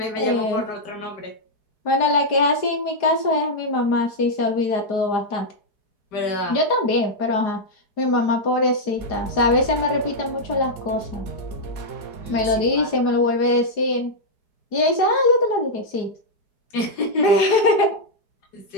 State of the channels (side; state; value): right; late; 4.9 ms